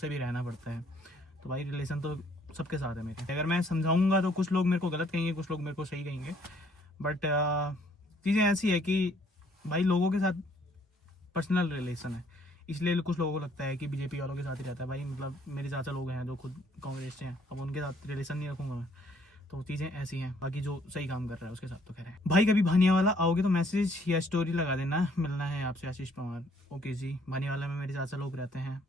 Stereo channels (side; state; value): both; normal; correlation 0.64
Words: भी रहना पड़ता है। तो भाई रिलेशन तो सबके साथ है मेरे। अगर मैं समझाऊंगा तो कुछ लोग मेरे को गलत कहेंगे, कुछ लोग मेरे को सही कहेंगे, बट चीज़ें ऐसी है कि भाई लोगों के साथ पर्सनल रिलेशन है, इसलिए कुछ लोगों को लगता है कि बीजेपी वालों के साथ ही रहता है। भाई मतलब मेरे चाचा लोग हैं जो खुद कांग्रेस से हैं, अब उनके साथ रिलेशन नहीं रखूंगा मैं। तो चीज़ें ऐसी हैं। बाकी जो सही काम कर रहा है उसके साथ तो खैर है। भाई कभी भानियावाला आओगे तो मैसेज या स्टोरी लगा देना, मिलना है आपसे। आशीष पवार ओके जी, भानियावाला में मेरे चाचा लोग रहते हैं,